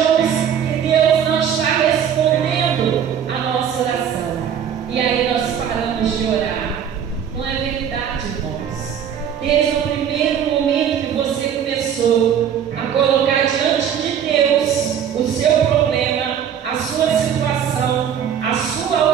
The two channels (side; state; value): left; quieter; 8.6 dB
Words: que Deus não está respondendo a nossa oração. E aí nós paramos de orar. Não é verdade, irmãos. Desde o primeiro momento que você começou a colocar diante de Deus o seu problema, a sua situação, a sua